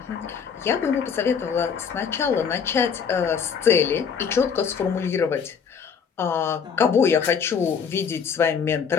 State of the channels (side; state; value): right; quieter; 6.7 dB